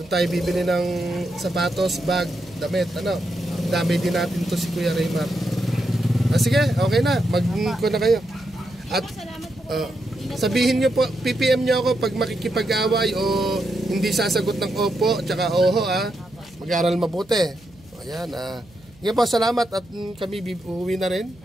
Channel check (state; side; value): noise; right; hum, 27 dB below the sound